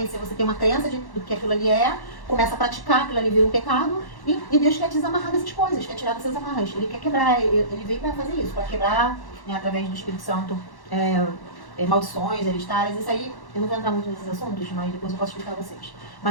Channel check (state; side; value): late; right; 1.1 ms